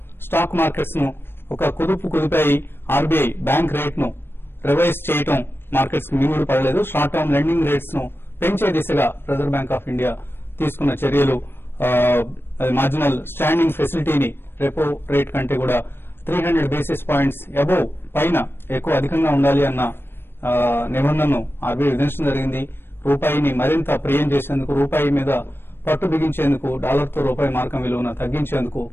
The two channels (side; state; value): right; late; 0.11 ms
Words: స్టాక్ మార్కెట్స్ ను ఒక కుదిపాయి. ఆర్బీఐ బ్యాంక్ రేట్ ను రివైజ్ చేయడం మార్కెట్స్ కు మింగుడు పడలేదు. షార్ట్ టర్మ్ లెండింగ్ రేట్స్ ను పెంచే దిశగా రిజర్వ్ బ్యాంక్ ఆఫ్ ఇండియా తీసుకున్న చర్యలు మార్జినల్ స్టాండింగ్ ఫెసిలిటీని రెపో రేట్ కంటే కూడా 300 బేసిస్ పాయింట్స్ అబోవ్ పైన అధికంగా ఉండాలి అన్న నిబంధనను ఆర్బీఐ విధించడం జరిగింది. రూపాయిని మరింత ప్రియం చేసేందుకు, రూపాయి మీద పట్టు బిగించేందుకు, డాలర్తో రూపాయి మార్కం విలువను తగ్గించేందుకు